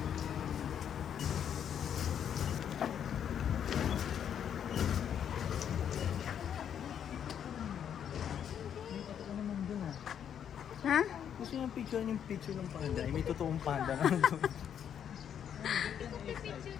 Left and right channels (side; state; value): right; quieter; 8.8 dB